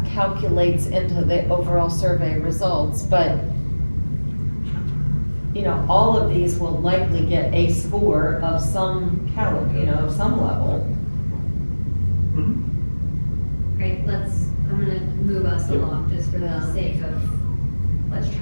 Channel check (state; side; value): inverted; both; correlation -1.00